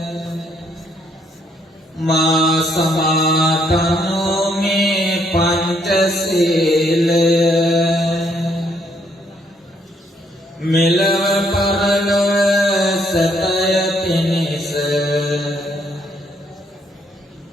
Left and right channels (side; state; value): both; normal; correlation 0.70